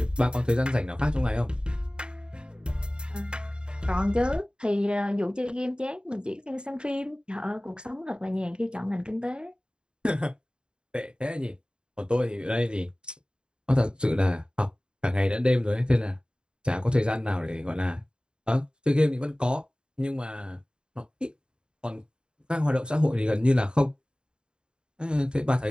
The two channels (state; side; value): late; left; 0.050 ms